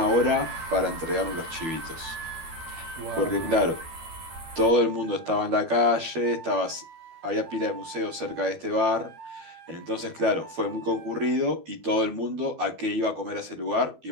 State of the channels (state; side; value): late; left; 12 ms